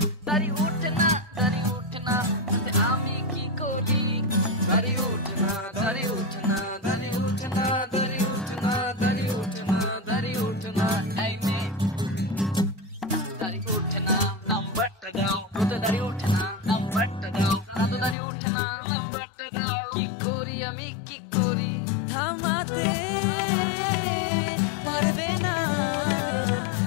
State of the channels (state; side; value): drops out; right; at 18.2 s